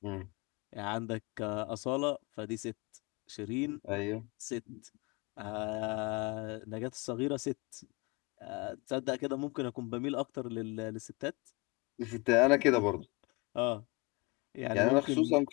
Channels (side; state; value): right; quieter; 27.1 dB